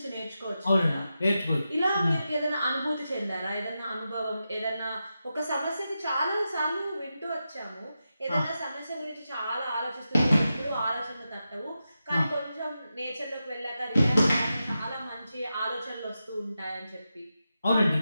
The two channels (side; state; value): both; inverted; correlation -0.90